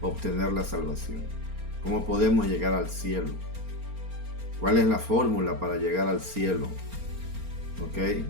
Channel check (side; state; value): left; late; 4.3 ms